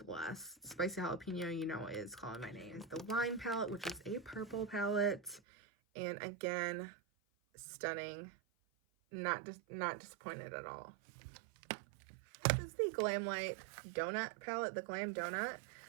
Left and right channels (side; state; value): left; drops out; at 5.4 s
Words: Spicy Jalapeno, you know, is calling my name. The Wine palette, which is a purple palette, and again, stunning. Not disappointed at all. This is the Glamlight Donut palette, the Glam Donut.